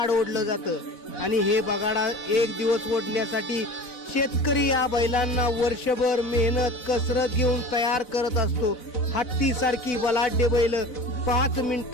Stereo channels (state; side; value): late; right; 4.0 ms